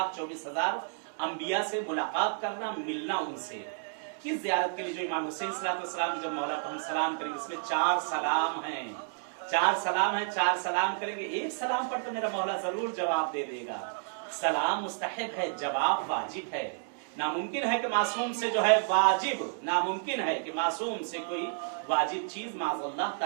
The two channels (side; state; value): left; silent; digital silence